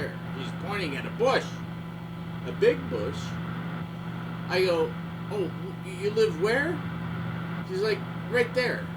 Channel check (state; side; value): identical; both; correlation 1.00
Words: She's pointing at a bush. A big bush. I go, oh, you live where? She's like, right there.